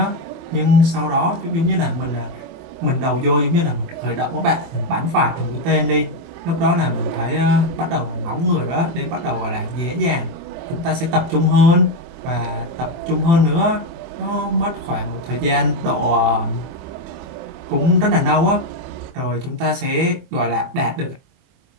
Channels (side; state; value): left; late; 24 ms